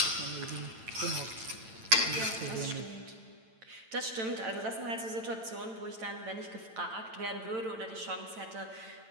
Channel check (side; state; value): left; late; 9.0 ms